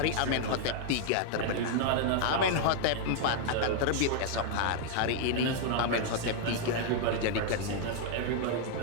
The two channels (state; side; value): different; both; correlation 0.00